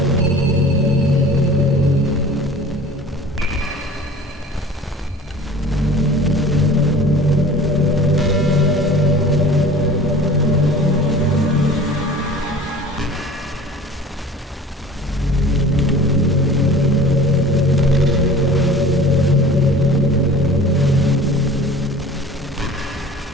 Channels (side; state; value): both; normal; correlation 0.43